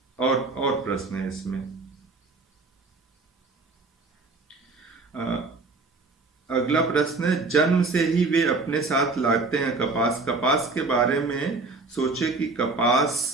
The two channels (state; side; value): quieter; left; 3.7 dB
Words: और प्रश्न है इसमें। अगला प्रश्न है, जन्म से ही वे अपने साथ लाते हैं कपास। कपास के बारे में सोचे कि कपास